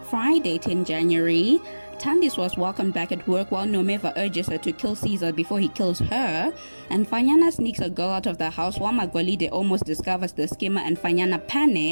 Friday, 10 January. Thandiswa was welcomed back at work while Nomeva urges her to kill Caesar before he kills her, and Fanyana sneaks a girl out of the house while Magolide almost discovers the scammer and Fanyana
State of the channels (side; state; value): both; inverted; correlation -1.00